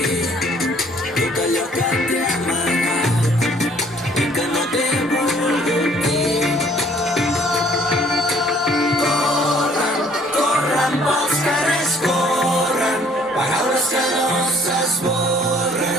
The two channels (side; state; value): both; normal; correlation 0.59